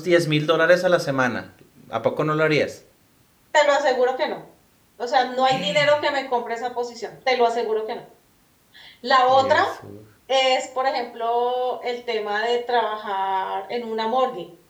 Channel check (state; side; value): identical; both; correlation 1.00